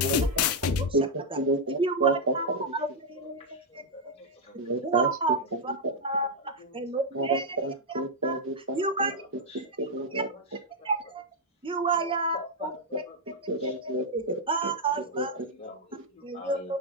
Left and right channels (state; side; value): normal; both; correlation -0.02